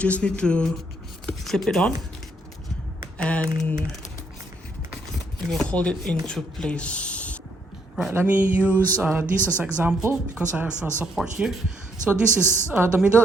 need to clip it on and it will hold it into place. Right, let me use this as an example because I have support here. So this is the middle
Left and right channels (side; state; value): both; normal; correlation 0.72